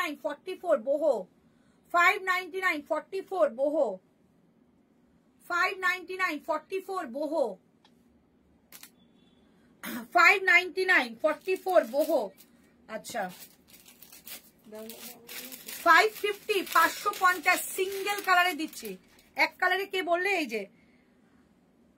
44 boho। 599, 44 boho। 599, 44 boho। 599, 44 boho। আচ্ছা 550, 550 সিঙ্গেল কালারে দিচ্ছি। এক কালারে কে বললে? এই যে,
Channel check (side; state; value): both; identical; correlation 1.00